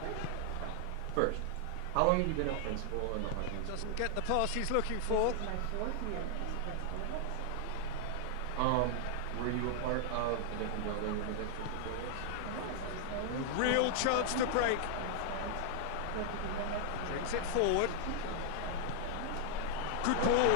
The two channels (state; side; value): different; both; correlation 0.00